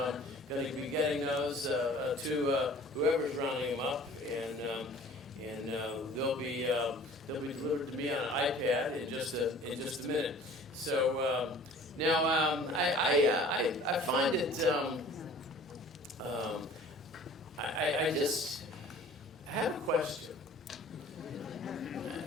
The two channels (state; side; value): normal; both; correlation 0.48